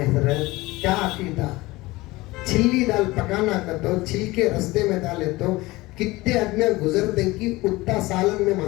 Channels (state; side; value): quieter; right; 20.4 dB